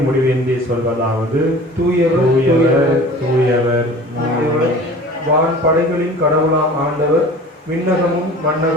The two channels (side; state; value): both; normal; correlation 0.42